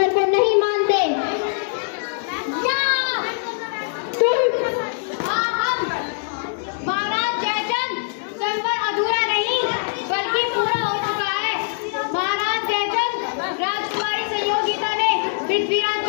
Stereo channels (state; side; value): silent; right; digital silence